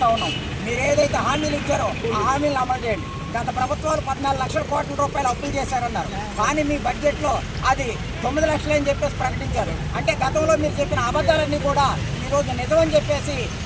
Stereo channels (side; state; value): both; identical; correlation 1.00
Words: ఉన్నాం. మీరు ఏదైతే హామీలు ఇచ్చారో ఆ హామీలను అమలు చేయండి. గత ప్రభుత్వాలు 14 లక్షల కోట్ల రూపాయలు అప్పులు చేశారన్నారు, కానీ మీ బడ్జెట్లో అది 9 లక్షలు అని చెప్పేసి ప్రకటించారు. అంటే గతంలో మీరు చెప్పిన అబద్ధాలన్నీ కూడా ఈరోజు నిజమని చెప్పేసి